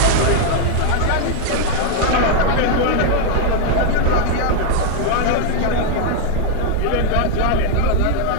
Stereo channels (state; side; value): different; both; correlation 0.01